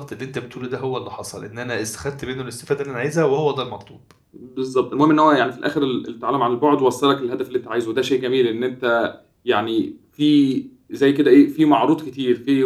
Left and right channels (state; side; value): identical; both; correlation 1.00